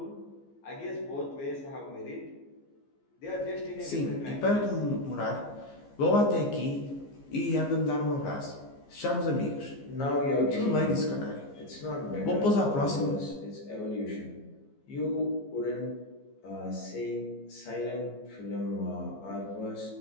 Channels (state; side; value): late; right; 15 ms